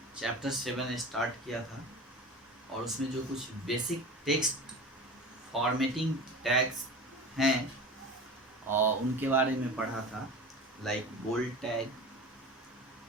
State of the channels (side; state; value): both; normal; correlation 0.34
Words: chapter 7 start किया था और उसमें जो कुछ बेसिक टेक्स्ट फॉर्मेटिंग टैग्स हैं और उनके बारे में पढ़ा था, like bold tag,